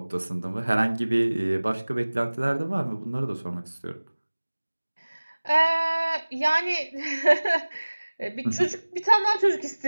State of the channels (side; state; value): both; inverted; correlation -1.00